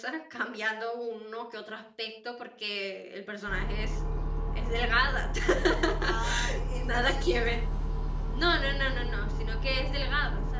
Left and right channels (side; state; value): both; identical; correlation 1.00